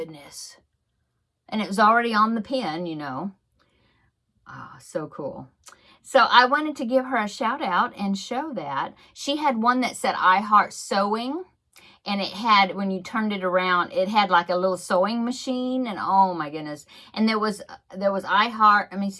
And it was already on the pin, you know. Oh, so cool. So I wanted to give her a shout out and show that. She had one that said I Heart Sewing. And it had, when you turned it around, it had like a little sewing machine. And oh my goodness. And there was I Heart, let me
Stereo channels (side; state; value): both; identical; correlation 1.00